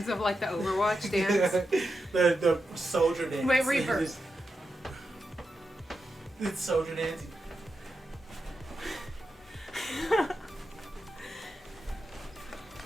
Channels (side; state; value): both; normal; correlation 0.88